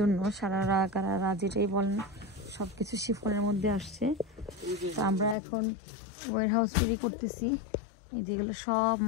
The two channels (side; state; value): right; drops out; at 5.4 s